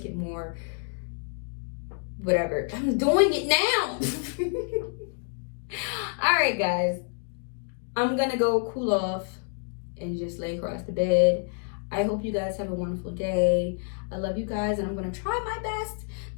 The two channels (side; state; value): right; silent; 56 dB below the other